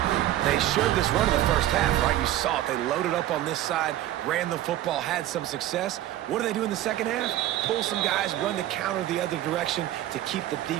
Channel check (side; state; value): left; quieter; 13.7 dB